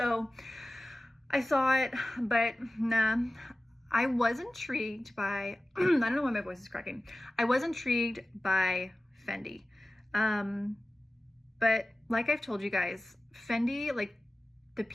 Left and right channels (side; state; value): both; normal; correlation 0.96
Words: I saw it, but nah. I was intrigued by, I don't know why my voice is cracking. I was intrigued by Fendi. But like I've told you guys, Fendi, like the